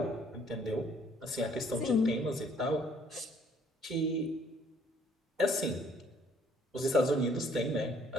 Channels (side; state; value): both; normal; correlation 0.62